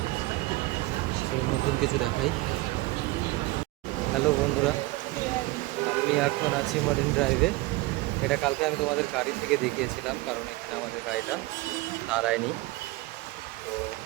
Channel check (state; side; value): quieter; left; 21.1 dB